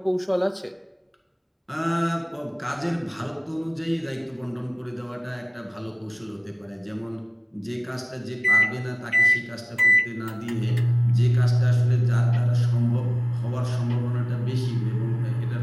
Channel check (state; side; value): identical; both; correlation 1.00